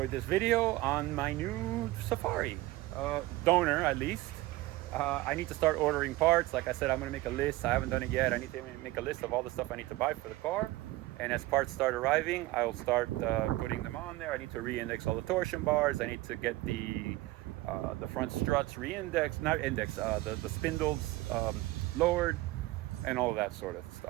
this video on my new Safari, donor at least. I need to start ordering parts. Like I said, I'm gonna make a list. I haven't done it yet. I need to make a list of all the stuff I need to buy for the car. And as parts start arriving, I'll start putting them on there. I need to re-index all the torsion bars. I need to get the front struts re-indexed, the spindles lowered, and all of that sort of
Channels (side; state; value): left; quieter; 18.6 dB